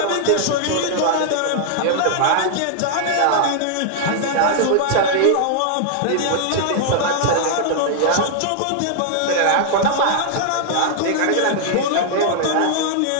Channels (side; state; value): both; different; correlation -0.01